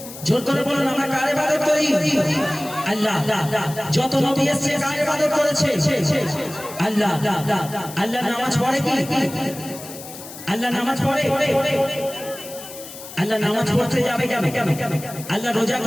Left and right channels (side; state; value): left; noise; hiss, 14 dB below the sound